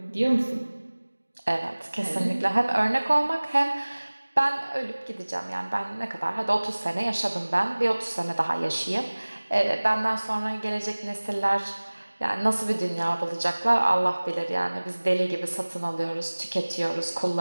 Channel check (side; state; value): both; inverted; correlation -1.00